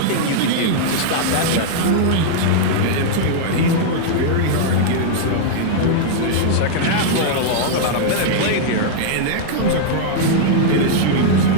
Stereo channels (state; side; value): different; both; correlation -0.01